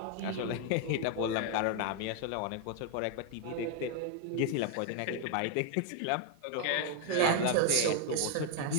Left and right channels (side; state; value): both; different; correlation 0.00